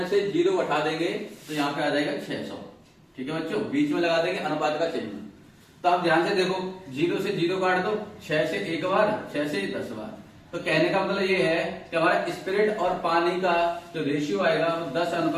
से 0 उठा देंगे तो यहाँ पे आ जाएगा 600, ठीक है बच्चों। बीच में लगा देंगे अनुपात का चिन्ह। तो आप ध्यान से देखो, 0 से 0 काट दो, 6 से 1 बार, 6 से 10 बार, तो कहने का मतलब ये है कि हमारा स्पिरिट और पानी का जो रेशियो आएगा वो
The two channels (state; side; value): identical; both; correlation 1.00